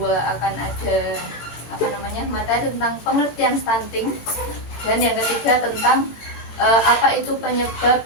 akan ada materi tentang pengertian stunting, dan yang ketiga tentang apa itu penyebab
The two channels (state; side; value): late; right; 18 ms